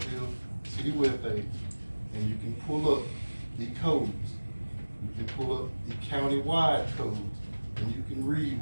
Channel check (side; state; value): both; inverted; correlation -1.00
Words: city webpage, and you can pull up the codes. You can pull up the county-wide codes, and you can read